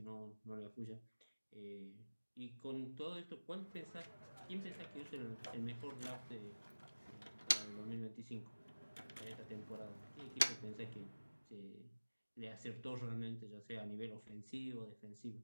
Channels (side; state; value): both; inverted; correlation -1.00